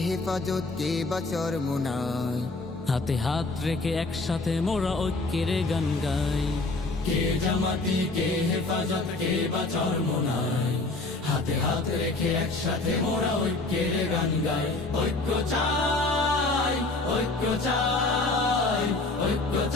হেফাজত কে বাচর মুনাই, হাতে হাত রেখে একসাথে মোরা ঐক্যের গান গাই। কে জামাতি কে হেফাজত কে বাচর মোনাই, হাতে হাত রেখে একসাথে মোরা ঐক্যের গান গাই। ঐক্য চাই, ঐক্য চাই, ঐক্য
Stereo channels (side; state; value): right; quieter; 3.2 dB